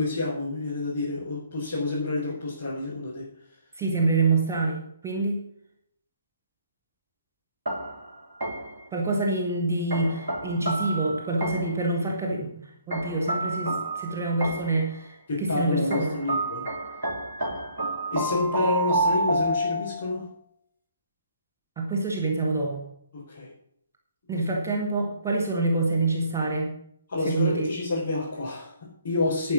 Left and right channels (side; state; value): both; inverted; correlation -0.61